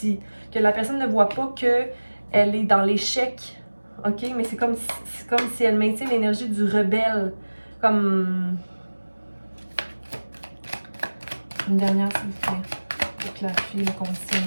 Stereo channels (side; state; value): both; inverted; correlation -1.00